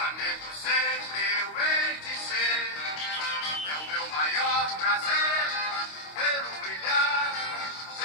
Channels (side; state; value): right; late; 25 ms